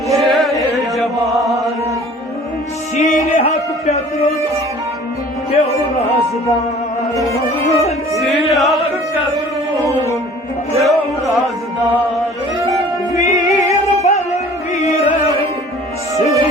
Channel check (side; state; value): both; normal; correlation 0.48